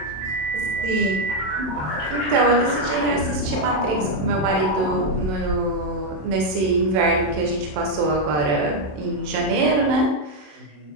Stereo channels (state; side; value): late; left; 27 ms